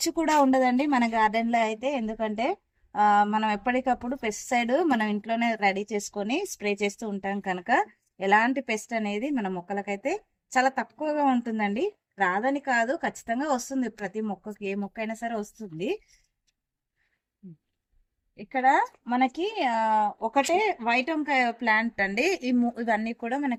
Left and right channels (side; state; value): both; identical; correlation 1.00